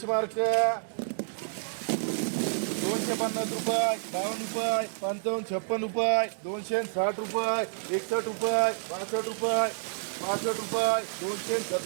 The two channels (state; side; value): silent; left; digital silence